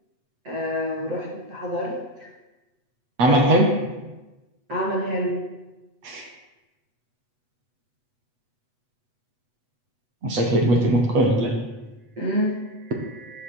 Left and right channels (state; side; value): late; left; 8.1 ms